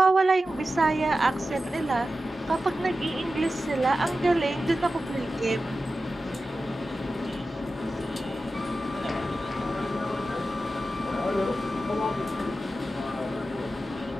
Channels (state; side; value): normal; both; correlation 0.93